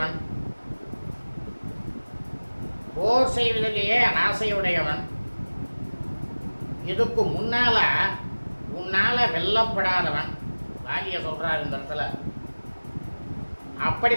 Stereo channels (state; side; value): inverted; both; correlation -1.00